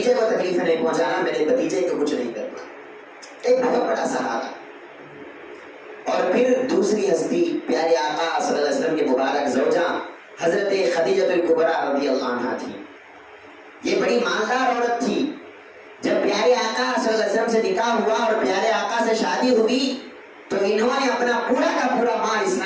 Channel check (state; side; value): identical; both; correlation 1.00